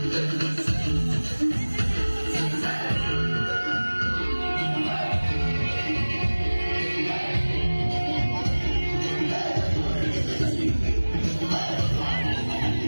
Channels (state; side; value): inverted; both; correlation -1.00